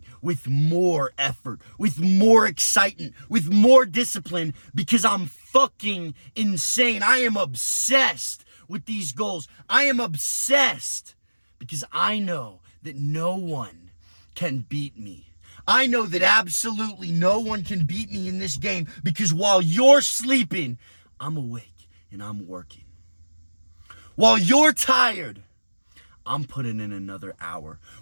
with more effort, with more excitement, with more discipline because I'm fucking insane. I am obsessed with these goals. I am obsessed because I know that no one can beat me. I know that absolutely no one can beat me in this game because while you're sleeping, I'm awake and I'm working. While you're tired, I'm putting in another hour.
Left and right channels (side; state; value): both; inverted; correlation -1.00